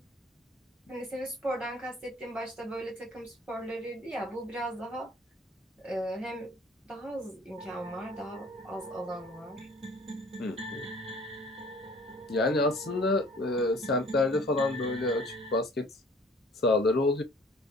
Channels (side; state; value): both; normal; correlation 0.53